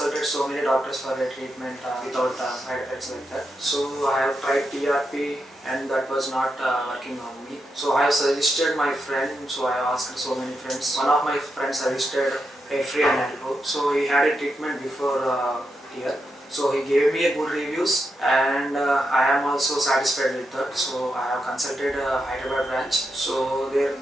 so many doctors for a treatment without side effects like that. So I have tried TRP and that was not working on me. So I have suggested my friend. So I have asked so many friends. One of my friends suggested Hairfree Hairgrow. So he had a treatment before here. So he gave me a good reviews, and I am also satisfied with that. So I have consulted Hyderabad branch. So there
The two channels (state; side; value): normal; both; correlation 0.85